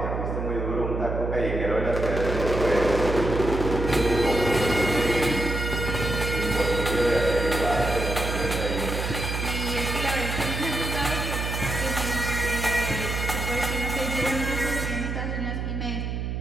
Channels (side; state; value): right; noise; hum, 3 dB below the sound